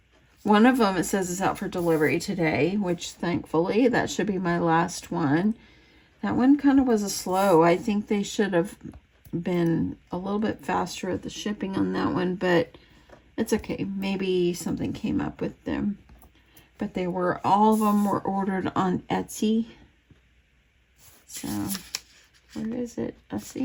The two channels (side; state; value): both; identical; correlation 1.00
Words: one of them, it says it's out for delivery today, which thankfully that should be my last one. That one kind of was a slow. I think they should have been a little bit faster at the shipping on that one, but it's okay. Maybe something came up with them. But they were, all of them were ordered on Etsy. So, where is it? I